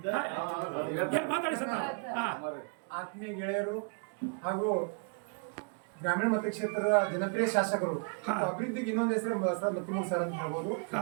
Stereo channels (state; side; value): quieter; left; 38.4 dB